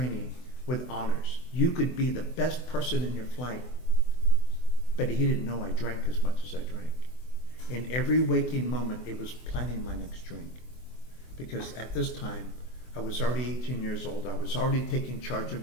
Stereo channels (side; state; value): right; late; 24 ms